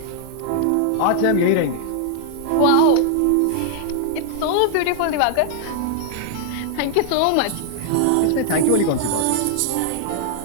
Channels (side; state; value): both; different; correlation -0.01